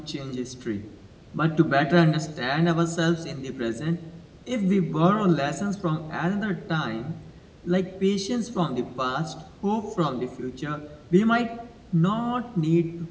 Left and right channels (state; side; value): identical; both; correlation 1.00